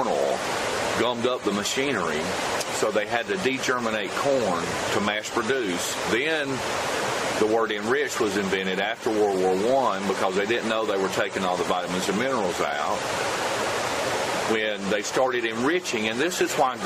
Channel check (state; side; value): identical; both; correlation 1.00